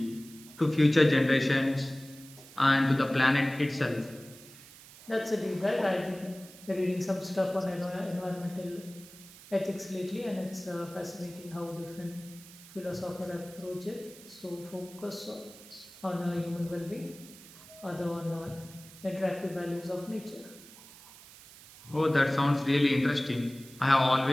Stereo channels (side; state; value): right; noise; hiss, 19 dB below the sound